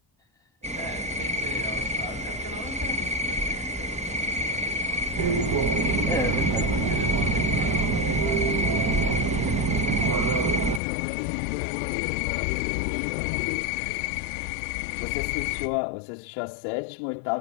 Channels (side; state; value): right; drops out; at 10.8 s